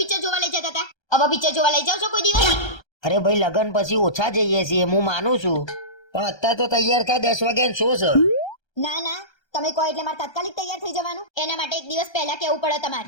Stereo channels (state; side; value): late; right; 1.3 ms